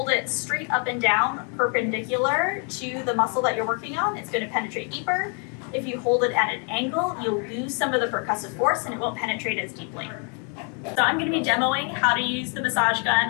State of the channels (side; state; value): right; quieter; 39.4 dB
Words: it straight up and down, perpendicular to the muscle that you're working on, it's going to penetrate deeper. If you hold it at an angle, you'll lose some of the percussive force and it won't penetrate as deeply. So I'm going to be demoing how to use the massage gun